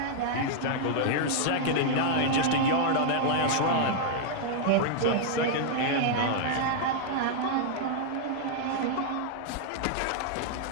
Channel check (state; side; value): different; both; correlation 0.00